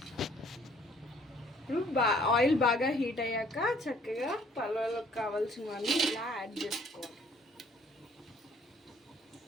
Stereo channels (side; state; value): both; normal; correlation 0.59